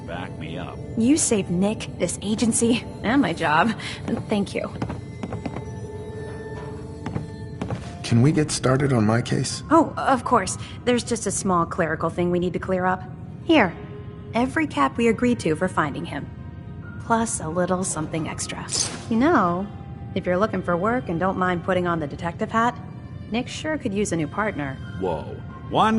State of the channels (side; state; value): both; identical; correlation 1.00